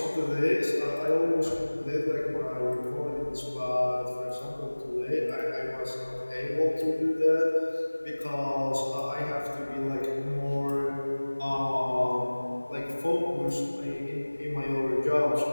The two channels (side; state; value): both; inverted; correlation -1.00